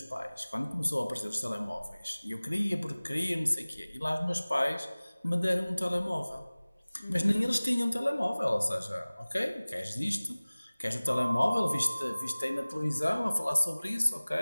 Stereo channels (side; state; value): both; inverted; correlation -0.99